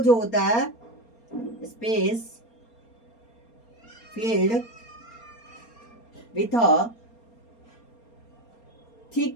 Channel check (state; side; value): late; right; 4.3 ms